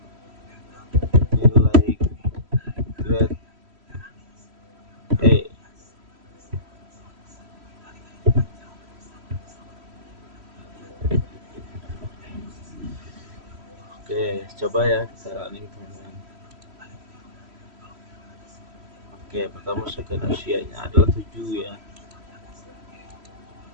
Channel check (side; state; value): left; late; 3.1 ms